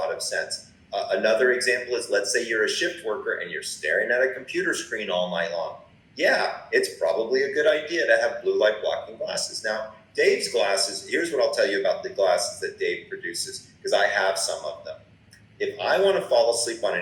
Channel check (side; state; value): both; identical; correlation 1.00